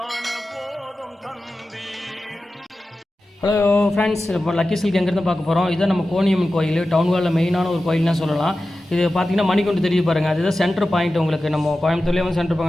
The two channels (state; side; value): normal; both; correlation 0.94